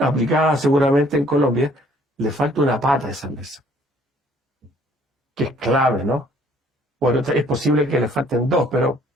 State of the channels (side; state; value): both; normal; correlation 0.60